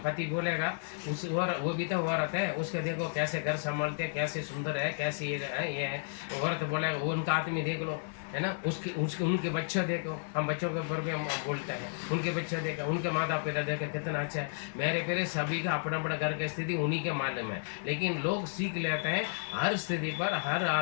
पति बोलेगा उस वो भी तो औरत है, उसके देखो कैसे घर संभालते हैं, कैसे सुंदर है, कैसे ये है। औरत बोलेगा वो उनका आदमी देख लो, है ना, उसके उनके बच्चे देखो। हम बच्चों के ऊपर भी हम बोलते हैं, उनके बच्चे देखो, उनके माता पिता देखो कितना अच्छा है। मेरे प्यारे, सभी का अपना अपना घर की स्थिति उन्हीं के मालूम है, लेकिन लोग सीख लेते हैं हर स्थिति पर, हर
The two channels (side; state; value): right; silent; 56 dB below the other